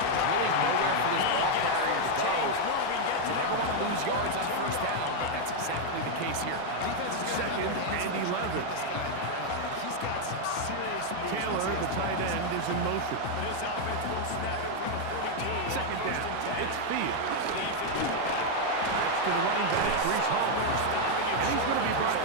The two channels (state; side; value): different; both; correlation 0.01